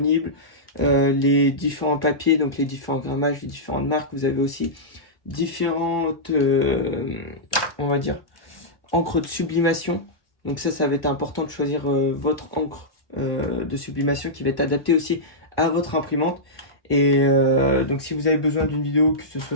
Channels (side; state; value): right; late; 1.1 ms